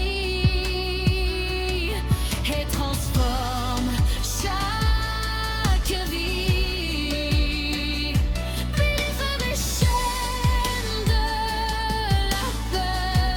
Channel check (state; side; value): identical; both; correlation 1.00